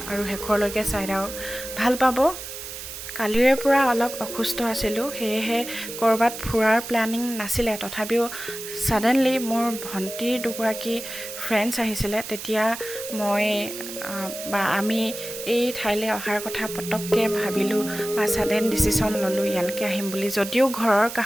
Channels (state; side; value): noise; right; hiss, 10 dB below the sound